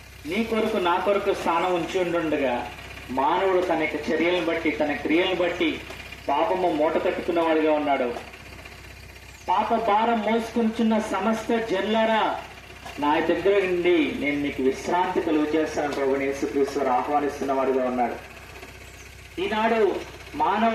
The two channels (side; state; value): both; identical; correlation 1.00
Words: నీ కొరకు నా కొరకు స్థానం ఉంచి ఉండుండగా మానవుడు తన యొక్క చర్యలను బట్టి, తన క్రియలను బట్టి పాపము మూట కట్టుకున్నవాడిగా ఉన్నాడు. పాప భారం మోసుకుంటున్న సమస్త జనులారా, నా దగ్గర నుండి నేను మీకు విశ్రాంతి కలుగు చేస్తాను ప్రభువైన యేసుక్రీస్తు ఆహ్వానిస్తున్న వాడిగా ఉన్నాడు. ఈనాడు